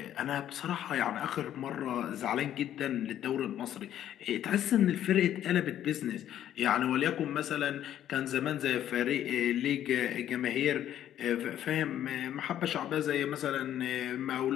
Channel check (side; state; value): right; quieter; 11.2 dB